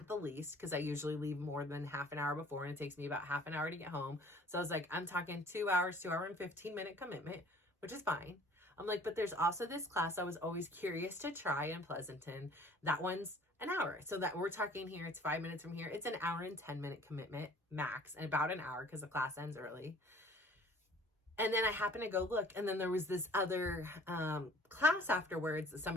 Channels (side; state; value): both; normal; correlation 0.53